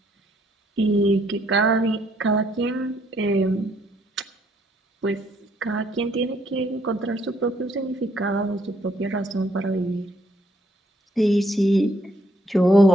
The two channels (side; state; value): both; normal; correlation 0.69